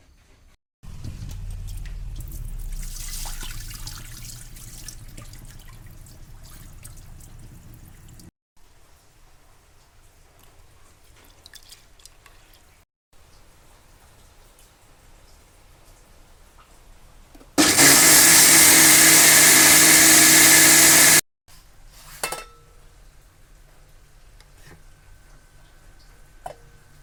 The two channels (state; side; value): identical; both; correlation 1.00